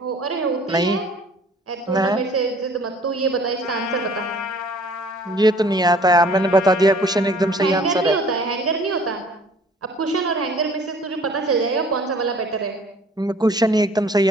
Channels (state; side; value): normal; both; correlation 0.53